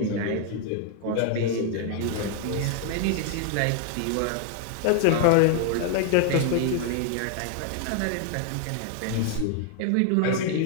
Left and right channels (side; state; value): both; different; correlation 0.00